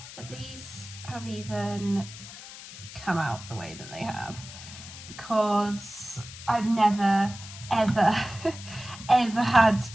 that these have even come out the way that they have, because I've never ever ever had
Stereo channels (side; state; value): left; noise; hiss, 14 dB below the sound